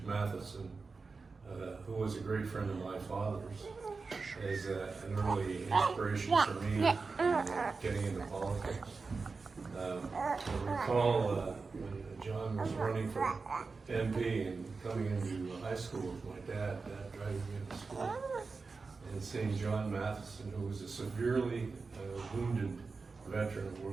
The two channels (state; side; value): quieter; left; 4.3 dB